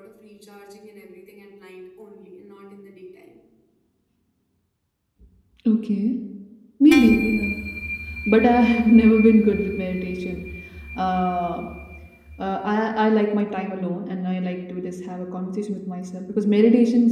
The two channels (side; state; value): both; identical; correlation 1.00